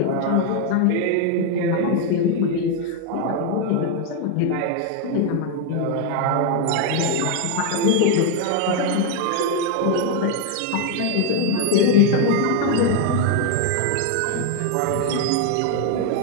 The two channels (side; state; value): both; different; correlation 0.01